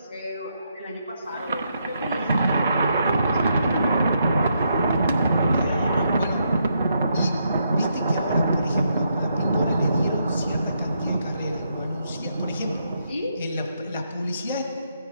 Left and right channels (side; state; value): both; inverted; correlation -0.78